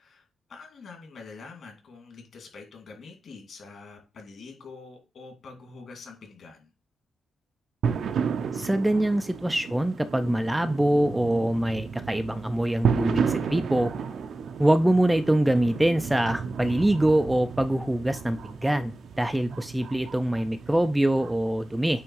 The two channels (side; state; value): both; normal; correlation 0.96